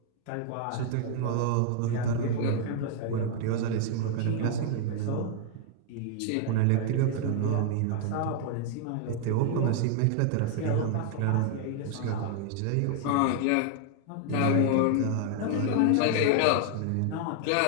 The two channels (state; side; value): different; both; correlation 0.00